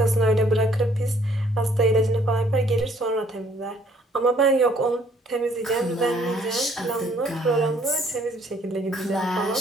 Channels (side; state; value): both; normal; correlation 0.62